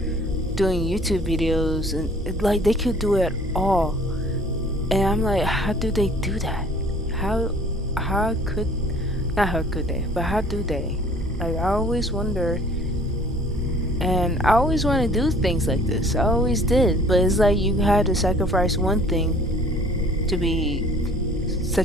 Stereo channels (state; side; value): normal; both; correlation 0.53